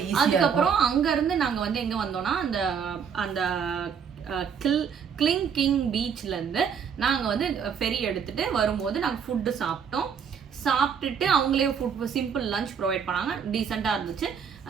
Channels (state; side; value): quieter; left; 7.0 dB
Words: ஈஸியா. அதுக்கப்புறம் அங்க இருந்து நாங்க வந்து எங்க வந்தோம்னா அந்த அந்த கிங் பீச்ல இருந்து நாங்க வந்து ஃபெரி எடுத்துட்டு வரும்போது நாங்க ஃபுட்டு சாப்பிட்டுட்டு அவங்களே ஃபுட் சிம்பிள் லஞ்ச் ப்ரொவைட் பண்ணாங்க. டீசெண்டா இருந்துச்சு.